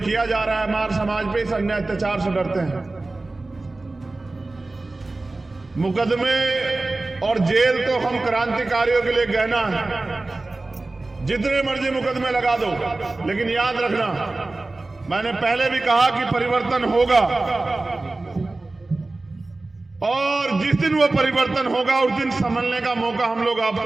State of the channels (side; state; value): left; quieter; 3.1 dB